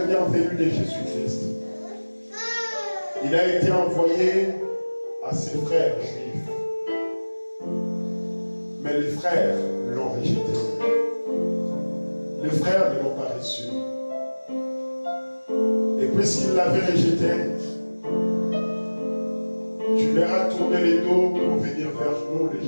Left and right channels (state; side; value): inverted; both; correlation -1.00